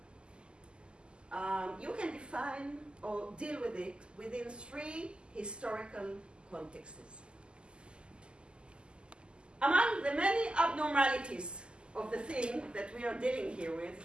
you can define or deal with it within three historical contexts. Among the many abnormalities of the thing that we are dealing here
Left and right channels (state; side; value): late; left; 0.050 ms